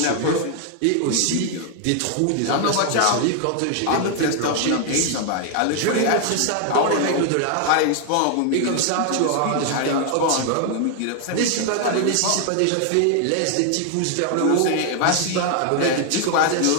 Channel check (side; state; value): both; different; correlation 0.00